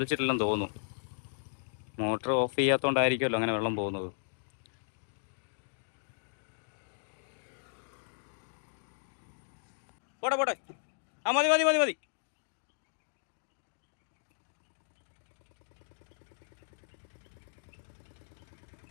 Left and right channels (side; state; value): right; silent; digital silence